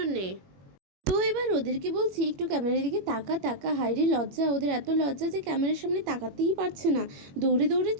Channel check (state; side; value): late; left; 21 ms